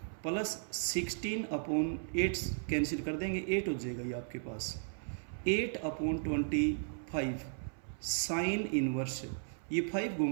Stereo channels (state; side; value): silent; left; 54 dB below the other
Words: प्लस 16/8 कैंसिल कर देंगे, 8 हो जाएगा ये आपके पास 8/25 साइन इनवर्स, ये 5